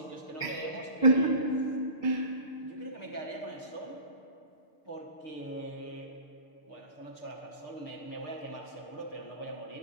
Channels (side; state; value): right; late; 6.6 ms